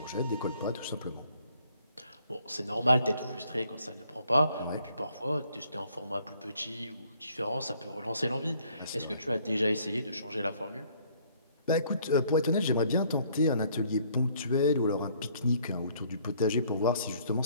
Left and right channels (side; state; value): both; inverted; correlation -0.63